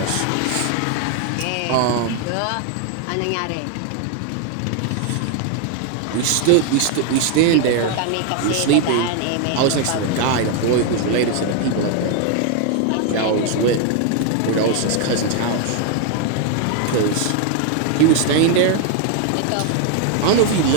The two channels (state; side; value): different; both; correlation 0.01